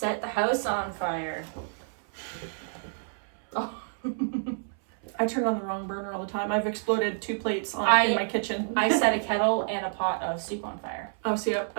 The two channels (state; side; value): silent; left; 59 dB below the other